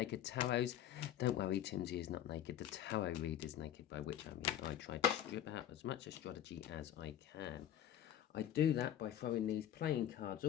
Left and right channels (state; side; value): quieter; right; 11.2 dB